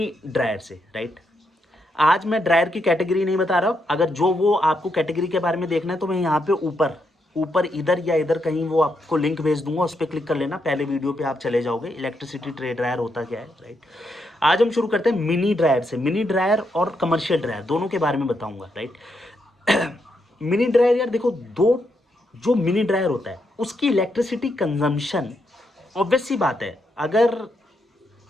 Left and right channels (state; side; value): normal; both; correlation 0.80